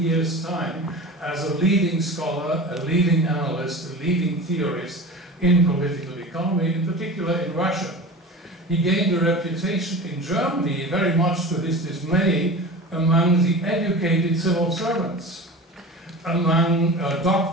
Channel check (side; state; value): both; normal; correlation 0.34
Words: time, as a leading scholar, a leading analyst, a leading theorist in political economy, in particular in Russia. He gained a reputation in Germany, very much to his dismay, among the educated civil servants, among